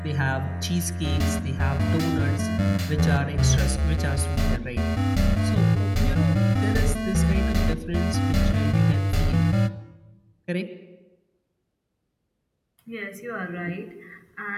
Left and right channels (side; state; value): both; identical; correlation 1.00